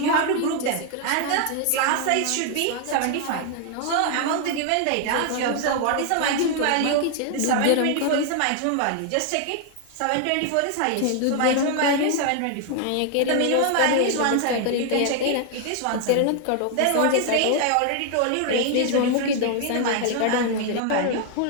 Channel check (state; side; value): different; both; correlation 0.00